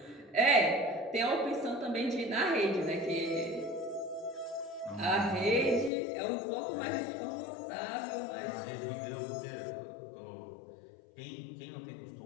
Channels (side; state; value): right; drops out; at 5.9 s